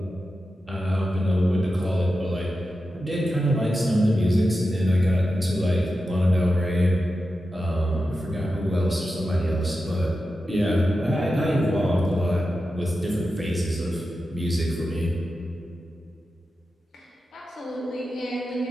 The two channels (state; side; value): normal; both; correlation 0.91